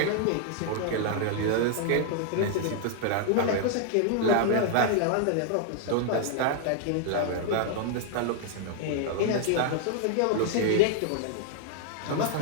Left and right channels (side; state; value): both; different; correlation -0.01